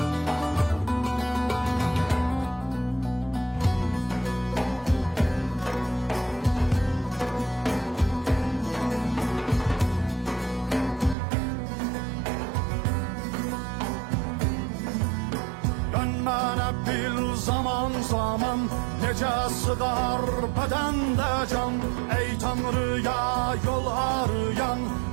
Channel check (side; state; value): left; drops out; at 11.2 s